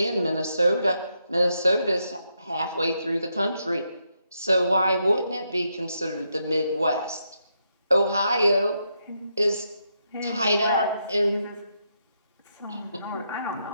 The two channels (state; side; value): inverted; both; correlation -0.80